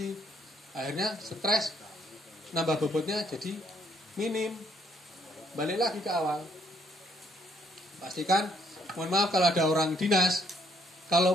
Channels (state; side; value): normal; both; correlation 0.68